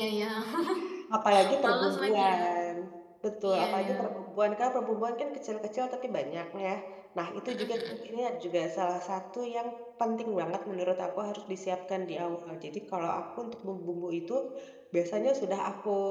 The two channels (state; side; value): identical; both; correlation 1.00